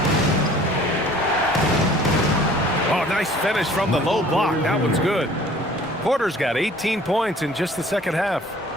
Oh, nice finish from the low block. That one's good. Porter's got 18 points in just the second half.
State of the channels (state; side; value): normal; both; correlation 0.51